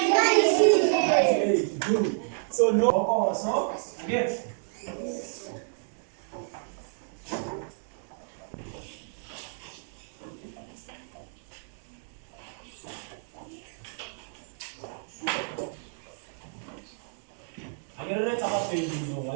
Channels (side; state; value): left; silent; digital silence